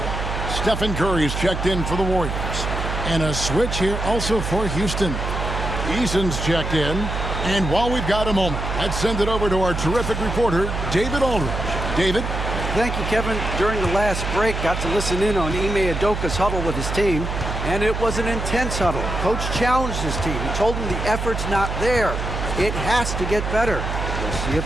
Stephen Curry's checked in for the Warriors. And a switch here also for Houston. Eason's checked in. And while we've got a moment, let's send it over to our terrific reporter, David Aldridge. David? Thank you, Kevin. During the last break, got to listen in on Ime Udoka's huddle with his team, and it was an intense huddle. Coach challenged his team. He told them the effort's not there. It has to get better. We'll see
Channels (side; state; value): right; noise; hum, 3 dB below the sound